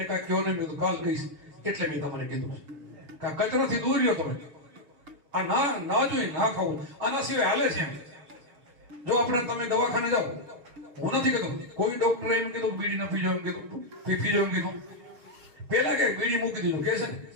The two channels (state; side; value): late; left; 7.3 ms